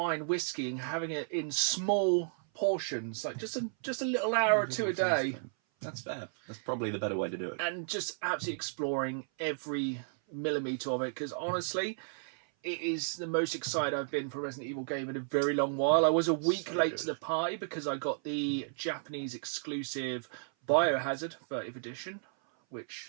whiskey and having it in small portions, like just a little hour or two a day. That's fair. That's probably the better way to do it. And just absolutely exploring every millimetre of it, because honestly, it is the most excited I've been for a Resident Evil game in a very long while. I was a week late to the party because I got the Japanese exclusive Biohazard 30th edition,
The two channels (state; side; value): silent; left; 56 dB below the other